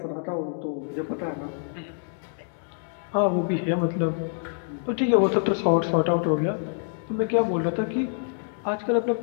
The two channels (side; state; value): right; silent; digital silence